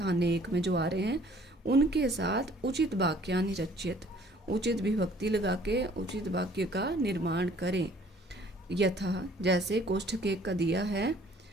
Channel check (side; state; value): both; normal; correlation 0.56